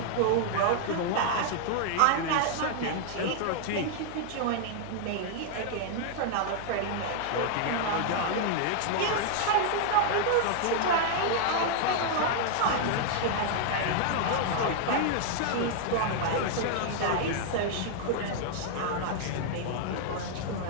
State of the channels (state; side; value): different; both; correlation 0.00